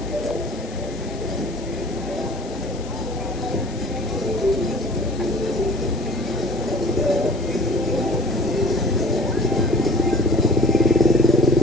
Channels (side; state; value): left; noise; hiss, 19 dB below the sound